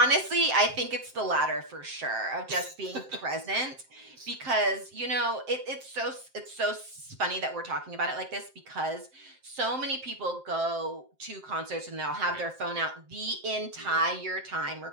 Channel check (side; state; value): left; late; 7.7 ms